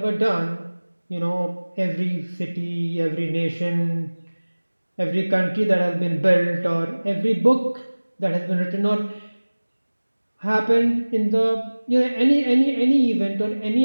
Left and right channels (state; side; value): inverted; both; correlation -1.00